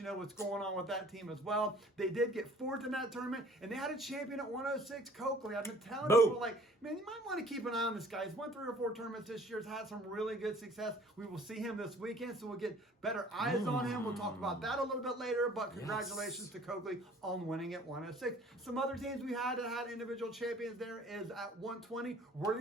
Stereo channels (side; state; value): both; normal; correlation 0.53